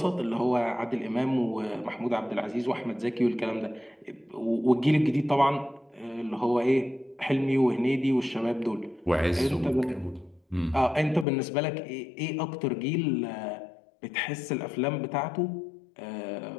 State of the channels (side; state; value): right; drops out; at 11.2 s